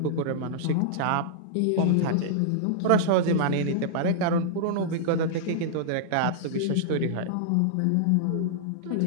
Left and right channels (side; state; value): both; different; correlation -0.02